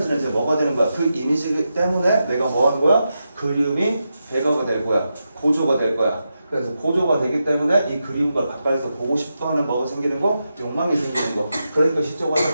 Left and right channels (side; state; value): both; inverted; correlation -0.87